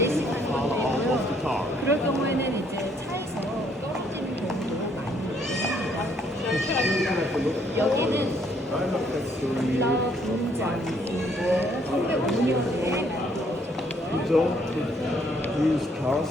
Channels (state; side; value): normal; both; correlation 0.67